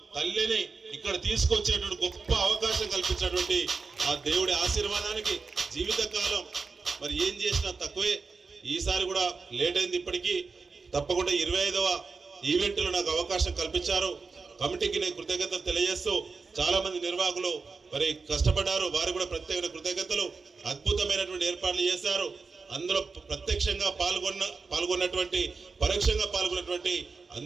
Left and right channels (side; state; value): left; quieter; 4.6 dB